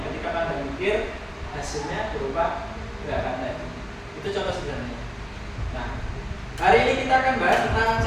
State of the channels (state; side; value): identical; both; correlation 1.00